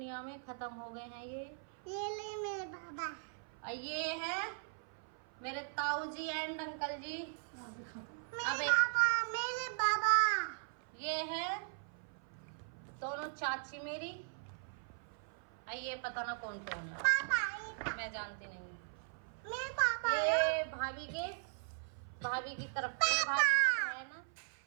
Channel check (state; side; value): silent; left; 52 dB below the other